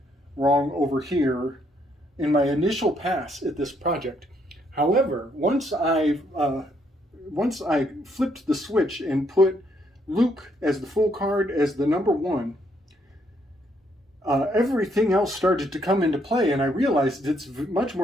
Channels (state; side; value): normal; both; correlation 0.72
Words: wrong over here in my initial pass at this project. However, once I flipped the switch and put Luke as the Fool card as the number 1, everything else started to come into play, and I realized it's much